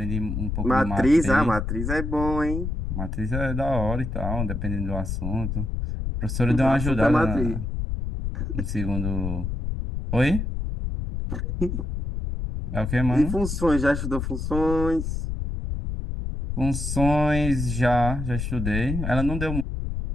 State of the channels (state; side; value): noise; left; rumble, 3 dB below the sound